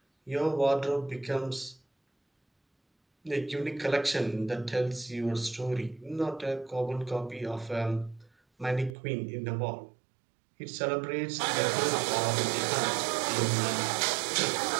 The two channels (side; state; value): left; drops out; at 9.0 s